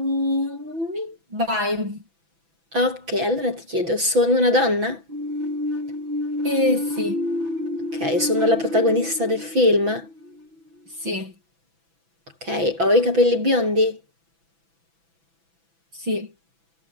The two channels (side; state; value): left; late; 6.0 ms